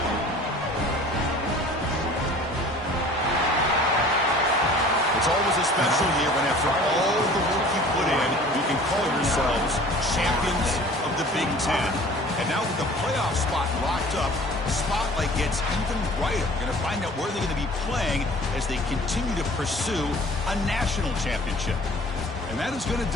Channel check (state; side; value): normal; both; correlation 0.47